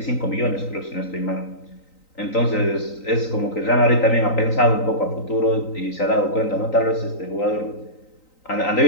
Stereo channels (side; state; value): right; late; 3.9 ms